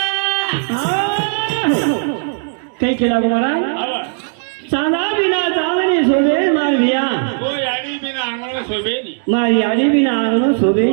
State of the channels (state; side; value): silent; left; digital silence